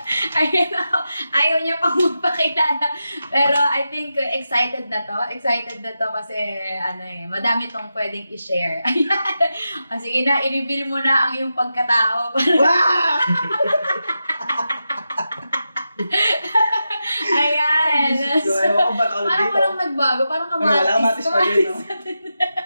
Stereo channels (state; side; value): inverted; both; correlation -0.90